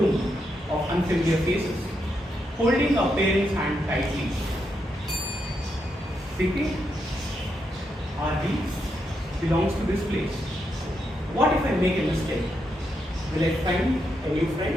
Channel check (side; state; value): both; normal; correlation 0.82